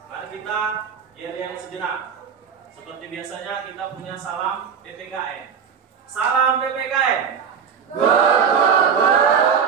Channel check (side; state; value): left; quieter; 7.0 dB